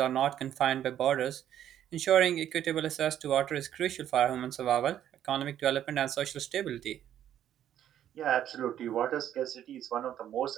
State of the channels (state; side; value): quieter; left; 10.8 dB